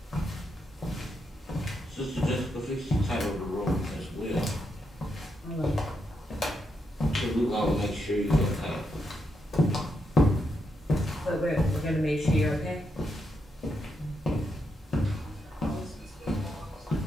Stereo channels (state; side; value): normal; both; correlation 0.82